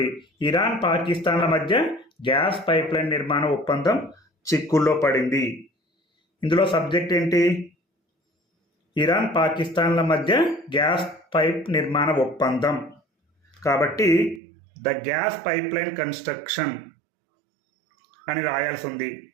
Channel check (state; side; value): drops out; left; at 14.4 s